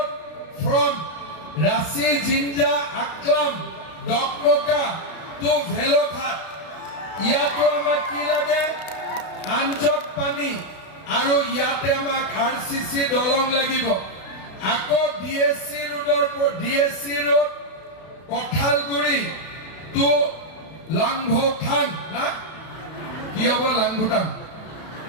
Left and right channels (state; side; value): late; right; 32 ms